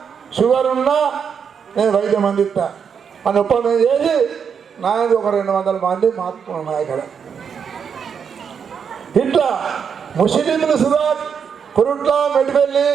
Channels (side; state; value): left; quieter; 6.9 dB